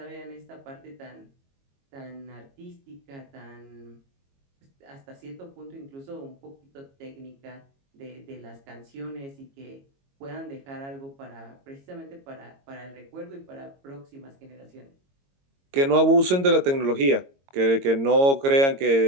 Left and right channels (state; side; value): late; left; 22 ms